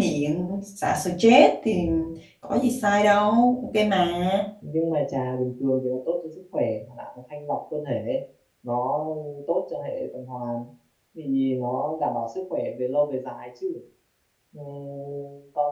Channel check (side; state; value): both; identical; correlation 1.00